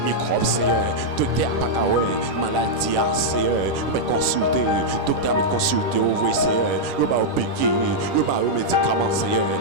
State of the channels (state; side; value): late; left; 10 ms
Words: microbe, Seigneur. Docteur Pakawe, maladie, Seigneur. Il va consulter, docteur va consulter, au vrai, Seigneur. Il va au piquer, il va aux médicaments, Seigneur,